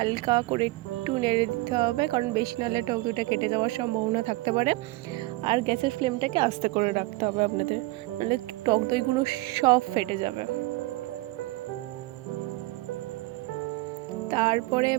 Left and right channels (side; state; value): left; quieter; 20.7 dB